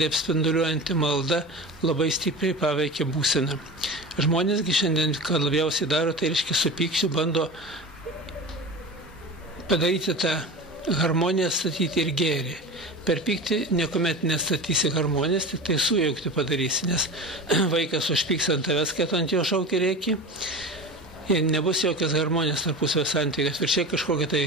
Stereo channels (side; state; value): both; normal; correlation 0.30